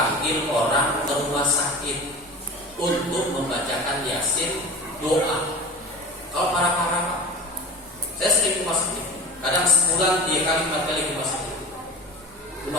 orang ke rumah sakit untuk membacakan Yasin, doa. Kalau para Pak, saya sering ke rumah sakit. Kadang sebulan 3 kali 4 kali ke rumah sakit.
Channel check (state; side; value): normal; both; correlation 0.33